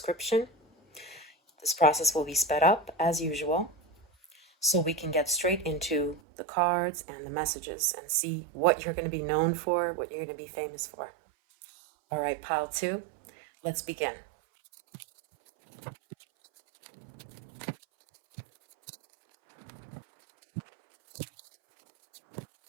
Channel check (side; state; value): left; drops out; at 6.2 s